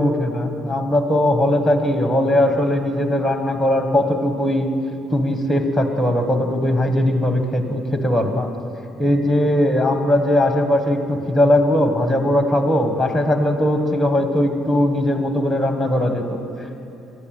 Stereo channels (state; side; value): normal; both; correlation 0.79